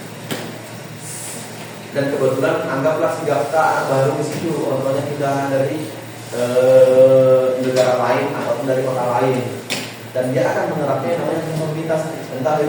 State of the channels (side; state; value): both; identical; correlation 1.00